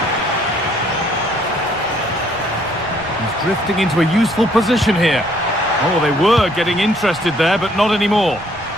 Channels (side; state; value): right; noise; rumble, 20 dB below the sound